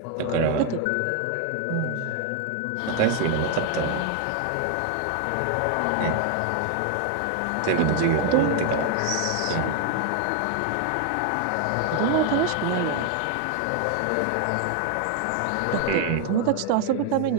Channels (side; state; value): both; different; correlation 0.00